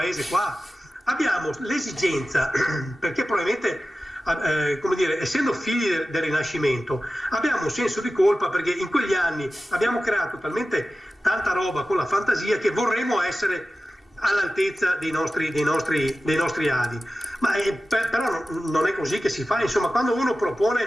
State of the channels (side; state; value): both; normal; correlation 0.94